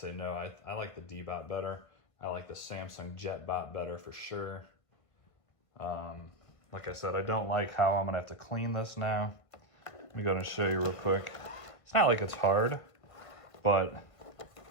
no. I like the Deebot better. I like the Samsung JetBot better for sure. Like I said, I don't like how I'm gonna have to clean this now. Let me go and show you real quick. It's not like it's hard, but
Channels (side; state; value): right; late; 1.5 ms